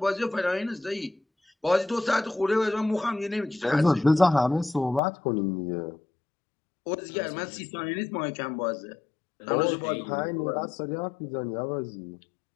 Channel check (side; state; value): right; drops out; at 5.0 s